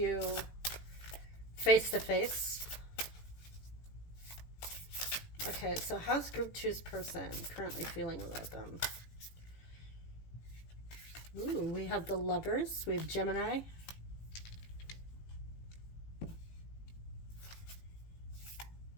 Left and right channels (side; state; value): right; late; 18 ms